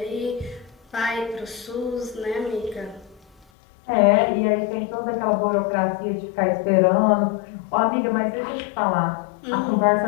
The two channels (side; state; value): right; drops out; at 3.5 s